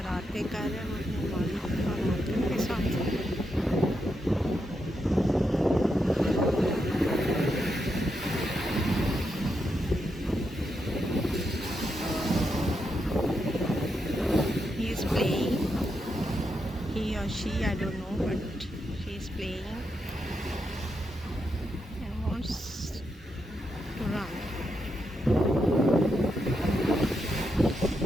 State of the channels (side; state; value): both; normal; correlation 0.83